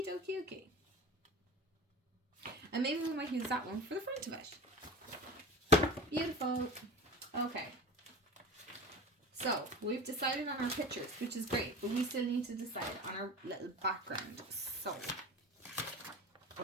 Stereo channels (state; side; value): normal; both; correlation 0.31